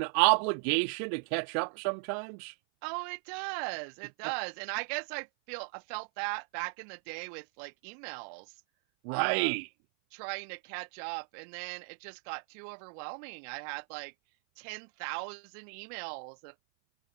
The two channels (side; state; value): left; silent; 54 dB below the other